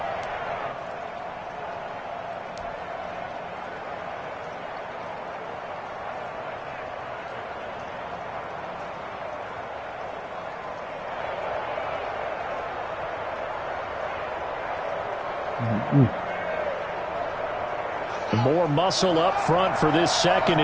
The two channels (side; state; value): both; identical; correlation 1.00